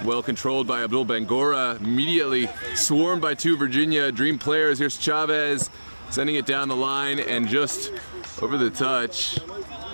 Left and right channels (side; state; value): both; inverted; correlation -1.00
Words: well controlled by Abdul Bangora, immediately swarmed by two Virginia Dream players. Here's Chavez sending it down the line and just over the touch.